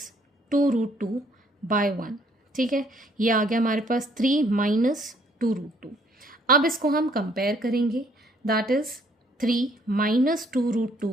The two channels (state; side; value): normal; both; correlation 0.64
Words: 2 root 2 by 1. ठीक है, ये आ गया हमारे पास 3 माइनस 2 रूट 2. अब इसको हम कंपेयर करेंगे. दैट इज़ 3 माइनस 2 रूट